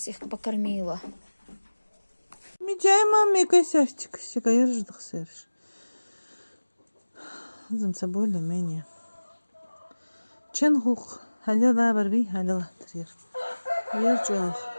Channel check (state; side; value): inverted; both; correlation -1.00